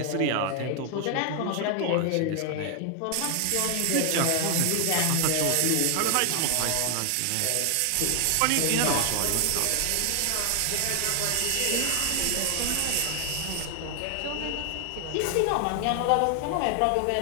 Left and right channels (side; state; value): both; different; correlation 0.00